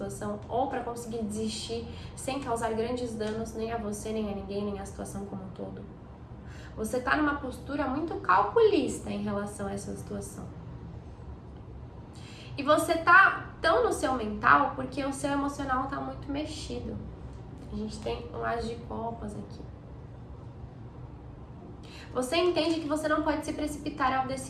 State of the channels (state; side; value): identical; both; correlation 1.00